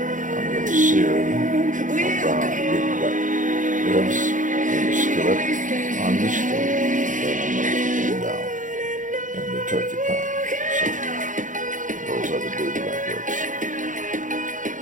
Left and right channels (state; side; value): late; left; 0.37 ms